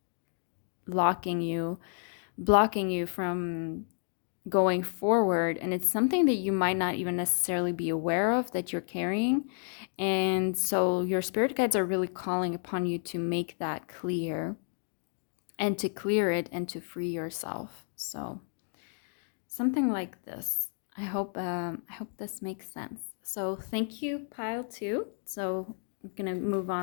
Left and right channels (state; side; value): silent; right; 56 dB below the other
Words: locking you, blocking you from going forward, and it's something that you might not even necessarily be aware of that you're carrying. And so your spirit guides are really calling upon you to make that clear and to clear it and to free yourself. So something like this. I hope this makes sense. So thank you, pile 2. So I'm gonna move